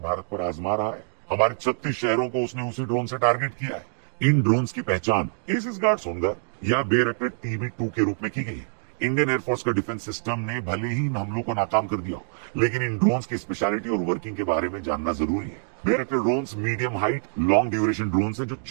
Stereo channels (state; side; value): silent; left; digital silence